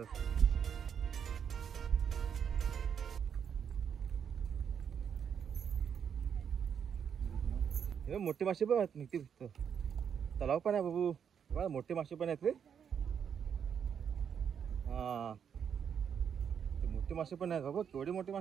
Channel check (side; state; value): left; quieter; 7.7 dB